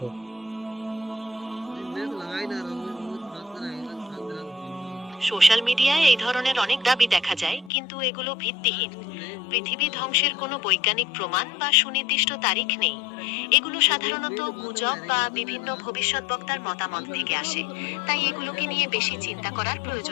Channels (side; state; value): right; drops out; at 7.7 s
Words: সোশ্যাল মিডিয়ায় এই ধরনের অনেক দাবি দেখা যায়, কিন্তু এগুলো ভিত্তিহীন। পৃথিবী ধ্বংসের কোনো বৈজ্ঞানিক প্রমাণ বা সুনির্দিষ্ট তারিখ নেই। এগুলো সাধারণত গুজব বা বিভিন্ন ভবিষ্যৎবক্তার মতামত থেকে আসে। তাই এগুলোকে নিয়ে বেশি চিন্তা করার